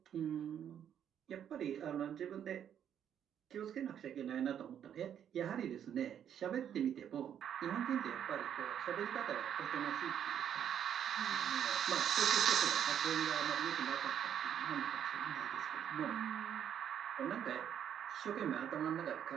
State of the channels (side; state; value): left; quieter; 9.3 dB